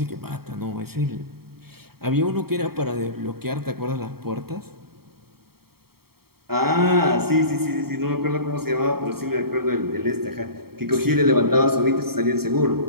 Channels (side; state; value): left; late; 0.95 ms